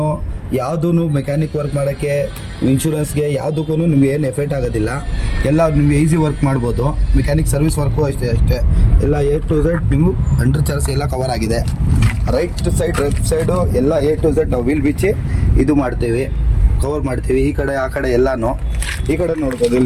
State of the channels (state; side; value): identical; both; correlation 1.00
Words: ಯಾವುದೂ ಮೆಕ್ಯಾನಿಕ್ ವರ್ಕ್ ಮಾಡೋಕ್ಕೆ, ಇನ್ಶೂರೆನ್ಸ್ಗೆ ಯಾವುದಕ್ಕೂ ನಿಮ್ಗೆ ಏನು ಎಫೆಕ್ಟ್ ಆಗೋದಿಲ್ಲ. ಎಲ್ಲ ನಿಮಗೆ ಈಸಿ ವರ್ಕ್ ಮಾಡ್ಬೋದು. ಮೆಕ್ಯಾನಿಕ್ ಸರ್ವಿಸ್ ವರ್ಕು ಅಷ್ಟೇ ಎಲ್ಲ A to Z ನೀವು ಅಂಡರ್ ಚಾರ್ಜ್ ಎಲ್ಲ ಕವರ್ ಆಗಿದೆ. ರೈಟ್ ಸೈಡ್ ಲೆಫ್ಟ್ ಸೈಡು ಎಲ್ಲ A to Z ನಾವು ವೀಲ್ ಬಿಚ್ಚಿ ಇದು ಮಾಡ್ತೀವಿ, ಕವರ್ ಮಾಡ್ತೀವಿ. ಈ ಕಡೆ ಆ ಕಡೆ ಎಲ್ಲನೂ, ಈ ಕಡೆ ನೋಡ್ಬೋದು